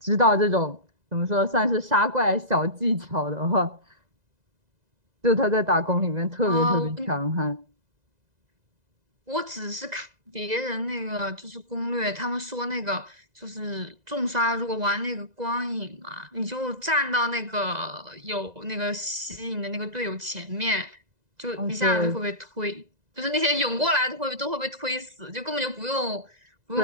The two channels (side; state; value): left; late; 2.0 ms